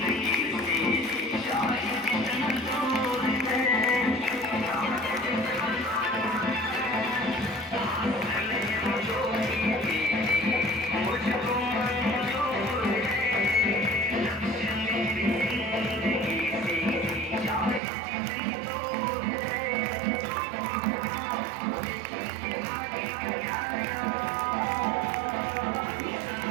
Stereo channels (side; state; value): left; drops out; at 17.8 s